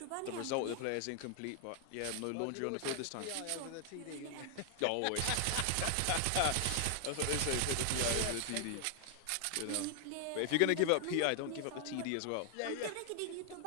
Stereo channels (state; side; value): different; both; correlation 0.00